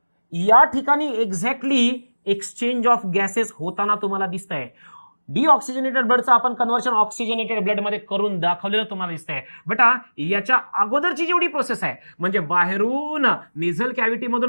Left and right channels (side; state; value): both; inverted; correlation -1.00